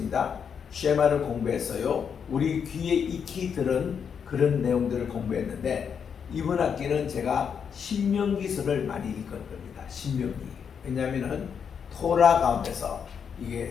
쉐마를 공부했어요. 우리 귀에 익히 들은 그런 내용들을 공부했는데 이번 학기는 제가 신명기서를 많이 읽을 겁니다. 신명기. 왜냐하면은 토라 가운데서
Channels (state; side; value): quieter; right; 7.1 dB